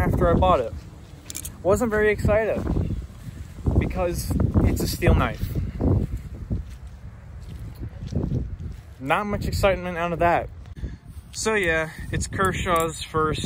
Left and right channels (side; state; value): both; identical; correlation 1.00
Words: I bought it. Wasn't very excited because it's a steel knife. Not much excitement out of that. So yeah, it's Kershaw's